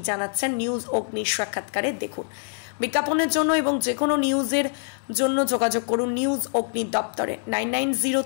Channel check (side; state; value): right; silent; digital silence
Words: জানাচ্ছেন নিউজ অগ্নির সাক্ষাৎকারে দেখুন। বিজ্ঞাপনের জন্য এবং যে কোনো নিউজের জন্য যোগাযোগ করুন নিউজ অগ্নির দপ্তরে